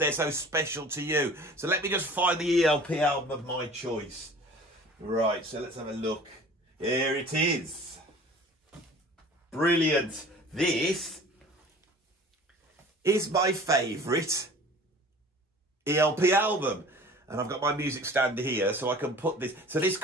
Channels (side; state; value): both; normal; correlation 0.45